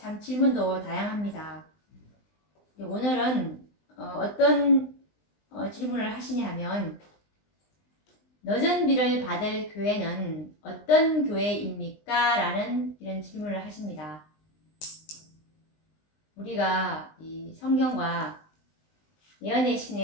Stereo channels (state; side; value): late; right; 20 ms